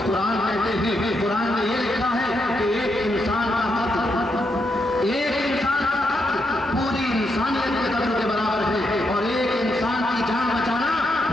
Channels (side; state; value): both; normal; correlation 0.81